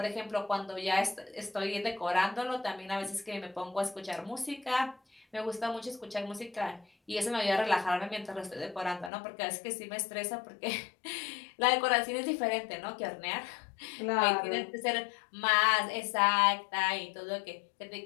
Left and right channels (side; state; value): right; drops out; at 9.1 s